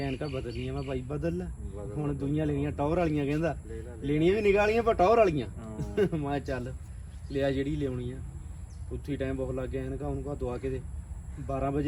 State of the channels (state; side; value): identical; both; correlation 1.00